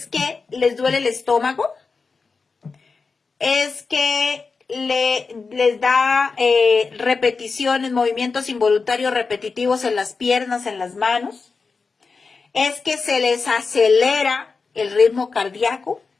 que les duele el estómago, es que les da repeticiones, movimientos involuntarios repetitivos en las piernas, en las manos, es que se les acelera el ritmo cardíaco,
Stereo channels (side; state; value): right; quieter; 4.6 dB